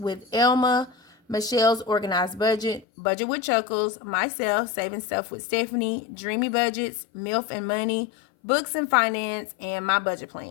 Elma, Michelle's Organized Budget, Budget with Chuckles, myself, Saving Stuff with Stephanie, Dreamy Budgets, MILF and Money, Books and Finance, and My Budget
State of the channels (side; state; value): right; drops out; at 2.9 s